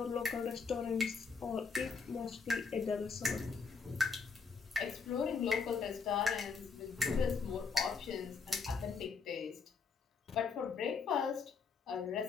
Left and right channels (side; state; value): right; quieter; 5.1 dB